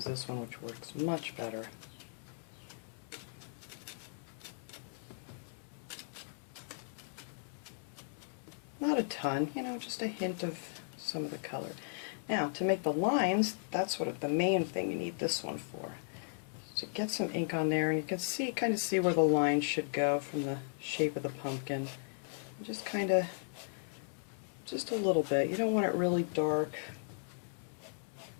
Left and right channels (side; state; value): right; silent; digital silence